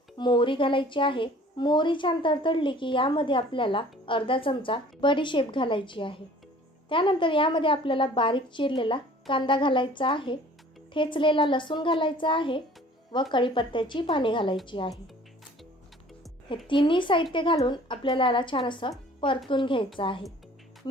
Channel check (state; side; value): normal; both; correlation 0.50